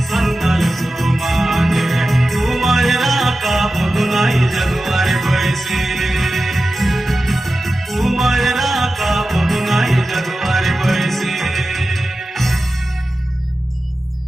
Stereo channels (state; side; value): normal; both; correlation 0.94